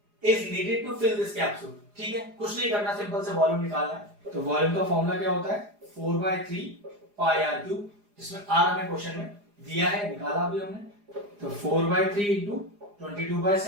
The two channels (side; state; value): left; late; 4.9 ms